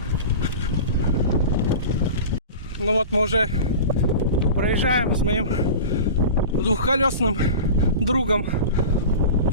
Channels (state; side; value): inverted; both; correlation -0.33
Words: Ну вот мы уже проезжаем с моим двухколесным другом